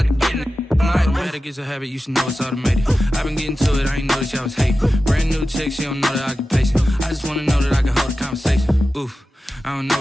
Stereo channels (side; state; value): both; normal; correlation 0.93